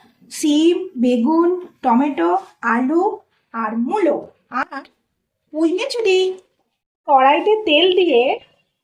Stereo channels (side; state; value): both; identical; correlation 1.00